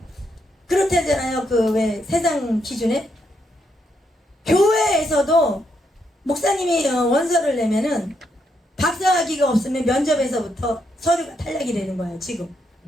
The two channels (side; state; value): both; normal; correlation 0.78